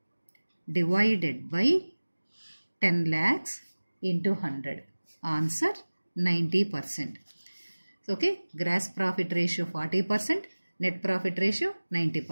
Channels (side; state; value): both; inverted; correlation -1.00